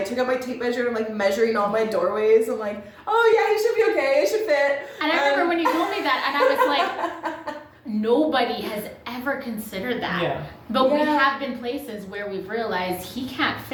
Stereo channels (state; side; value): identical; both; correlation 1.00